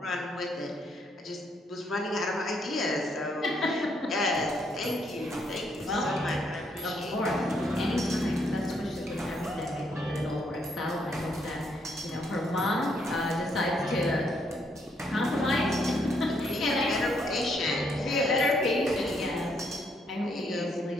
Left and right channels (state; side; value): normal; both; correlation 0.73